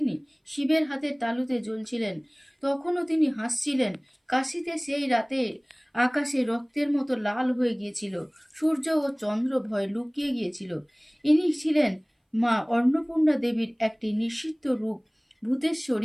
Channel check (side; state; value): both; identical; correlation 1.00